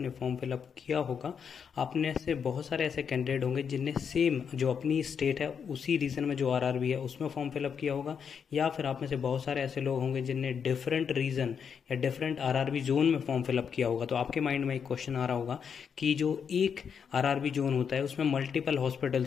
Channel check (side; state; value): right; quieter; 6.9 dB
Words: फॉर्म फिलअप किया होगा। आपने से बहुत सारे ऐसे कैंडिडेट होंगे जिनने सेम जो अपनी स्टेट है उसी रीजन में जो आरआरबी है उसमें फॉर्म फिलअप किया होगा, या फिर आप में से बहुत सारे ऐसे लोग होंगे जिनने डिफरेंट रीजन या डिफरेंट आरआरबी जोन में फॉर्म फिलअप किया होगा। तो आपके माइंड में एक क्वेश्चन आ रहा होगा कि जो एक आरआरबी जोन होता है उसमें मल्टीपल